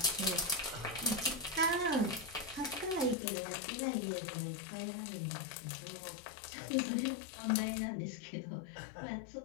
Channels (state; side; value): drops out; right; at 3.2 s